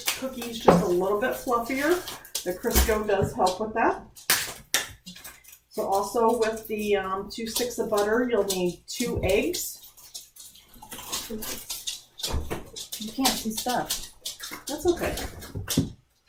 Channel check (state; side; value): identical; both; correlation 1.00